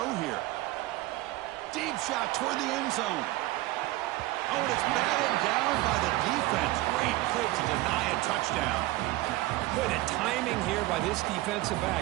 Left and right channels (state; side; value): quieter; left; 18.3 dB